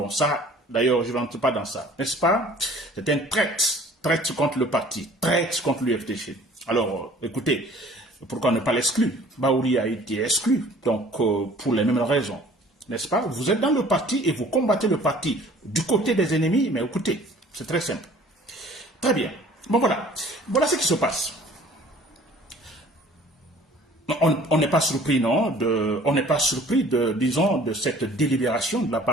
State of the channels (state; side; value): normal; both; correlation 0.51